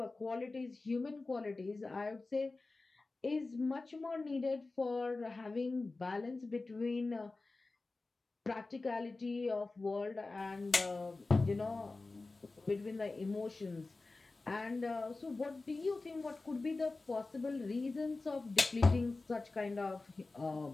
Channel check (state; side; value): quieter; right; 3.5 dB